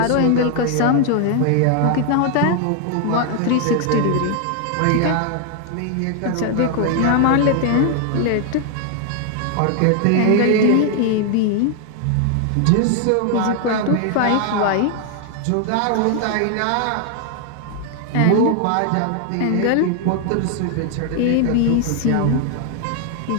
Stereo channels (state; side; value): different; both; correlation 0.00